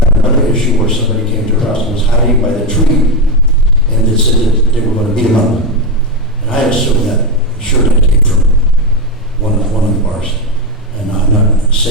another issue where somebody came to her house and was hiding by the tree, and they said that they were going to beat him up. And I assume that that came from one of the bars. And I'm not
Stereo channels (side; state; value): both; normal; correlation 0.10